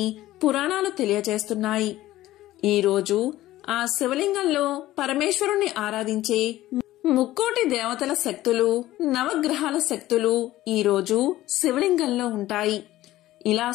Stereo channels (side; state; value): right; quieter; 15.5 dB